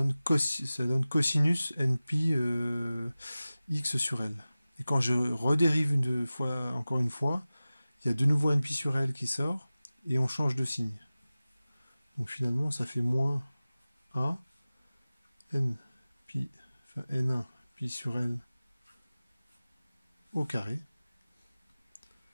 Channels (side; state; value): both; inverted; correlation -0.97